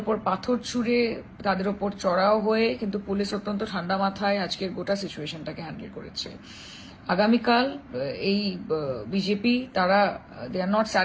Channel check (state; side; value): identical; both; correlation 1.00